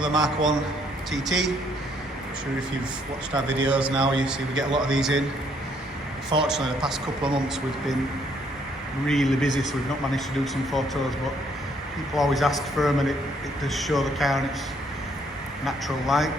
Mark 1 TT. I'm sure if you've watched our videos now, you see we get a lot of these in. Unfortunately, the past couple of months we've been really busy, so we've not managed to do some photos, but people always ask for them and it does show the car in its natural light.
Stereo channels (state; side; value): normal; both; correlation 0.68